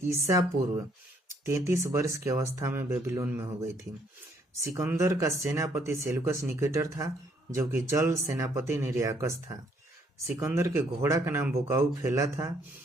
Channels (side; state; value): both; normal; correlation 0.67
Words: ईसा पूर्व 33 वर्ष की अवस्था में बेबीलोन में हो गई थी। सिकंदर का सेनापति सेल्यूकस निकेटर था, जबकि जल सेनापति निर्याकस था। सिकंदर के घोड़ा का नाम बुकाउफेला था।